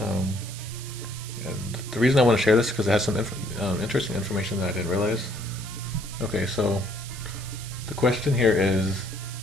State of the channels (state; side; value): noise; right; hiss, 13 dB below the sound